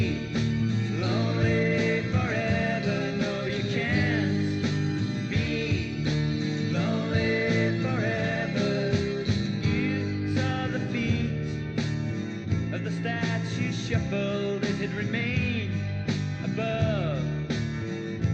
lonely forever. No, you can't be lonely forever. You saw the feet of the statue shuffled as it remained above.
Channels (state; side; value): identical; both; correlation 1.00